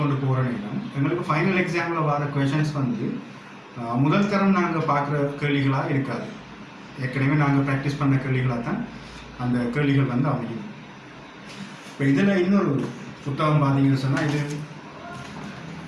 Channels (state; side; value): identical; both; correlation 1.00